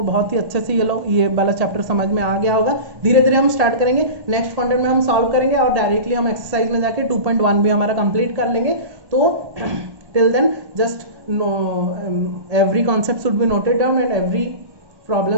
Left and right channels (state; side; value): late; left; 1.8 ms